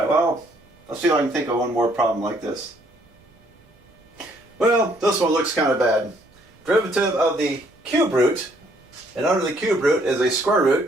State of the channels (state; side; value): noise; right; rumble, 30 dB below the sound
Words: well, let's see if I can think of one more problem like this. Well, this one looks kind of bad. Derivative of the cube root, and under the cube root is a square